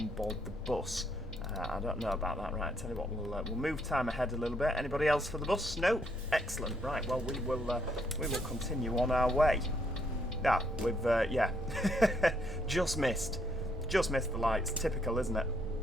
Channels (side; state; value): both; normal; correlation 0.72